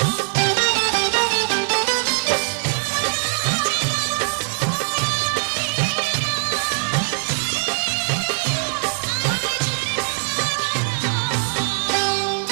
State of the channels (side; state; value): left; silent; 61 dB below the other